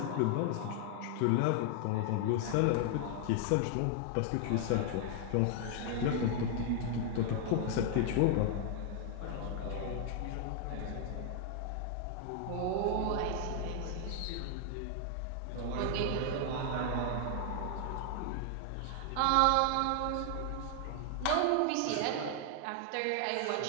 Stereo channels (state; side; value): different; both; correlation 0.00